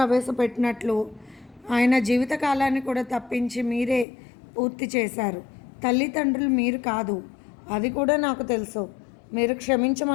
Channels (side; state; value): right; drops out; at 4.0 s